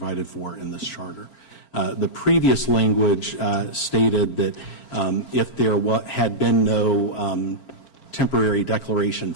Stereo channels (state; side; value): late; right; 4.4 ms